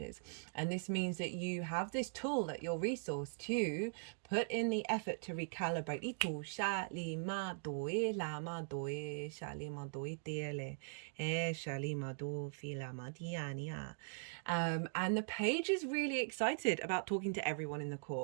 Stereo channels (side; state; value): left; silent; digital silence